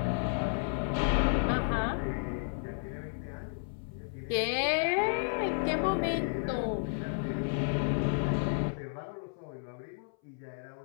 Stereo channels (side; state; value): right; silent; 56 dB below the other